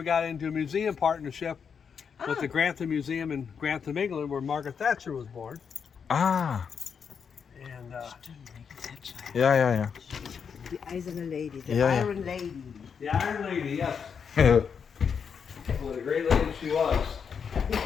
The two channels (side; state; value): right; quieter; 6.6 dB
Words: got into a museum partnership with the Grantham Museum in Grantham, England, where Margaret Thatcher was born. Ah. And Yeah. The Eiserne Lady, the Yeah. Iron Lady. the Iron Lady, yes. What a great lady she was.